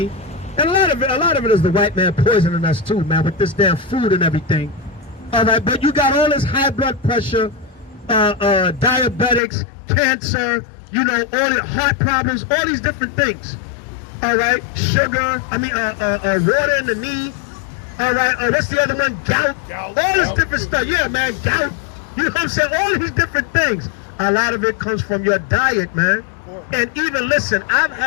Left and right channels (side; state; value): right; drops out; at 9.4 s